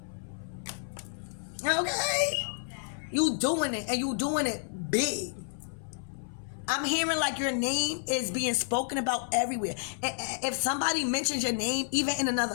Okay? You doing it, and you doing it big. I'm hearing like your name is being spoken about everywhere. If somebody mentions your name, even in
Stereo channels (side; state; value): right; silent; 58 dB below the other